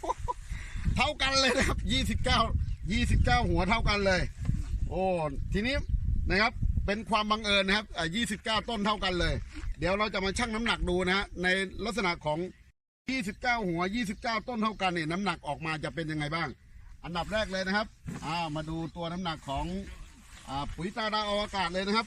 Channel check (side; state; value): both; identical; correlation 1.00